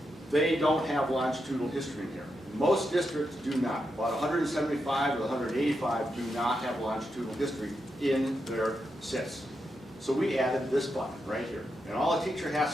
they don't have longitudinal history in here. Most districts do not. About 175 or 185 do not have longitudinal history in their SIS. So we added this button right here. And all a teacher has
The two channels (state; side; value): normal; both; correlation 0.85